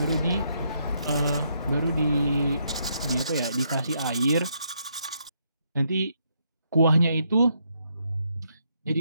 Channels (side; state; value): both; inverted; correlation -0.76